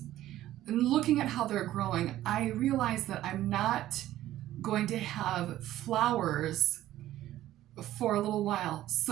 and looking at how they're growing, I realized that I'm not going to have flowers for a little while.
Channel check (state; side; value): quieter; left; 13.9 dB